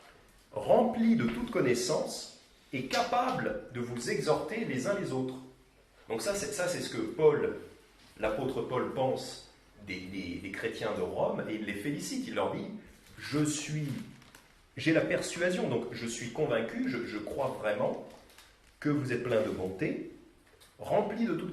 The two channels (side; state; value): both; identical; correlation 1.00